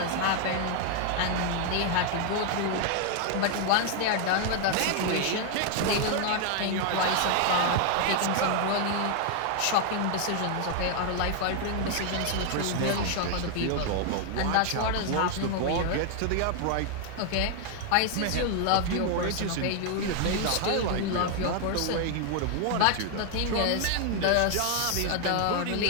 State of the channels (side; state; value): both; different; correlation 0.00